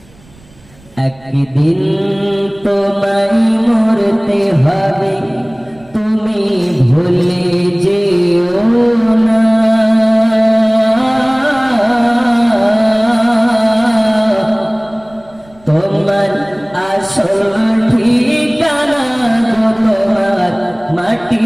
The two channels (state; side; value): noise; right; rumble, 28 dB below the sound